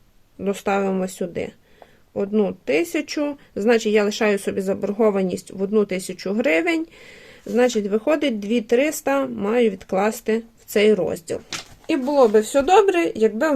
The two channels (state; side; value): identical; both; correlation 1.00